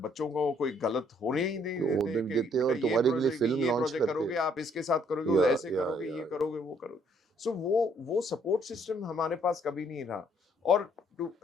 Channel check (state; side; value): normal; both; correlation 0.66